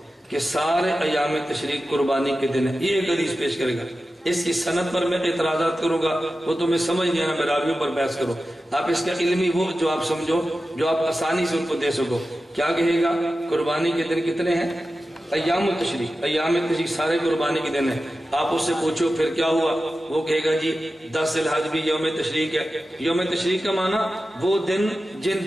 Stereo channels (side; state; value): both; normal; correlation 0.93